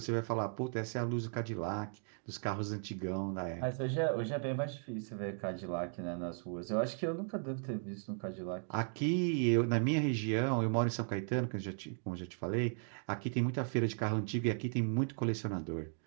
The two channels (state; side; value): silent; left; 53 dB below the other